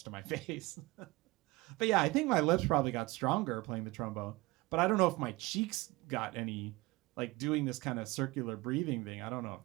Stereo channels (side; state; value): left; quieter; 21.9 dB